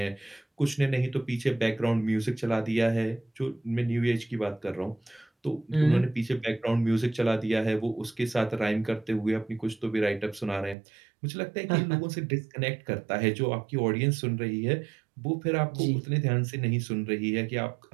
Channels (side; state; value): left; drops out; at 10.8 s